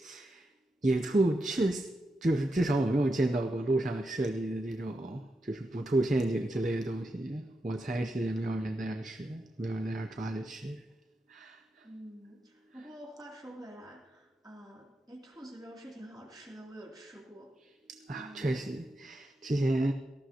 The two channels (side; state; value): both; normal; correlation 0.86